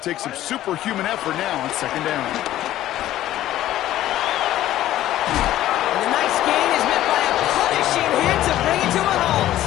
take some superhuman effort now on second down. And the nice gain is met by a punishing hit to bring it to a halt.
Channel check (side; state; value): right; quieter; 13.7 dB